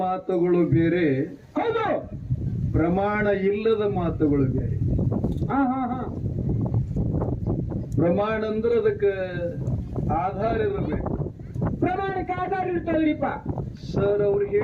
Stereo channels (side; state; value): both; identical; correlation 1.00